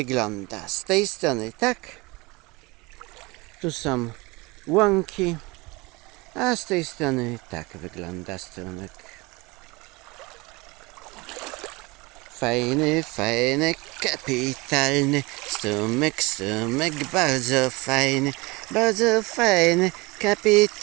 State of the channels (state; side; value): quieter; left; 24.4 dB